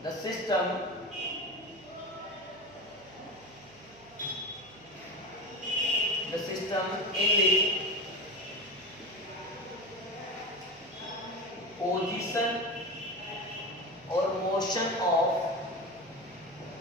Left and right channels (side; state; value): right; noise; hum, 24 dB below the sound